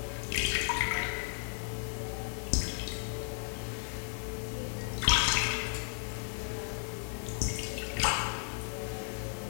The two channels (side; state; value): right; silent; 55 dB below the other